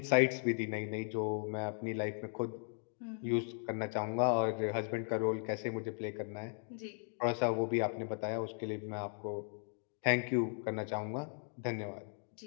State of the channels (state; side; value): silent; right; 53 dB below the other